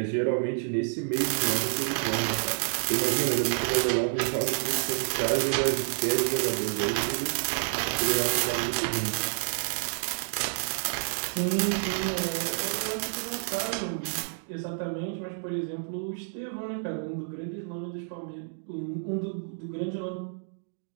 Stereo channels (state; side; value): silent; left; digital silence